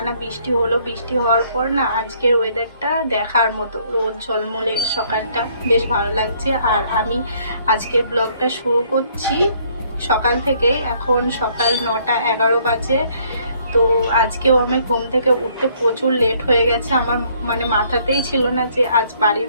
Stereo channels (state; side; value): inverted; both; correlation -0.65